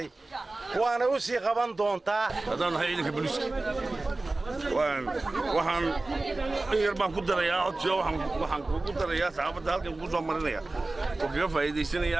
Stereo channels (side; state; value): left; quieter; 3.1 dB